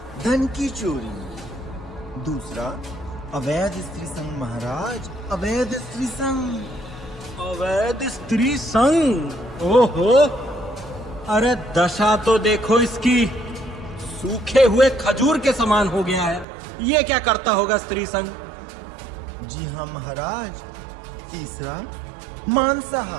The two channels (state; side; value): drops out; left; at 16.4 s